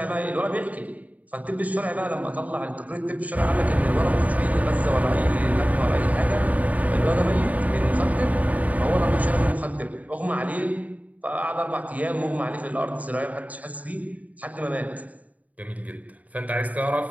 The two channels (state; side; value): late; left; 0.072 ms